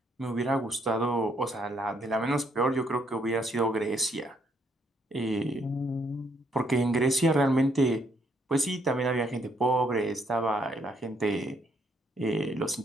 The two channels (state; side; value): normal; both; correlation 0.71